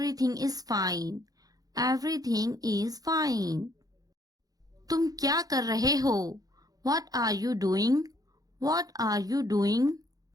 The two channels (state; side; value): late; left; 0.18 ms